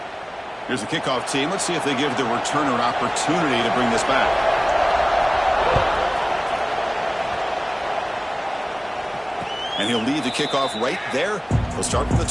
Here's the kickoff team. Let's see if they give the returner an opportunity to bring this back. And he'll lead the kickoff right there. He'll start from the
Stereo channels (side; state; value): both; identical; correlation 1.00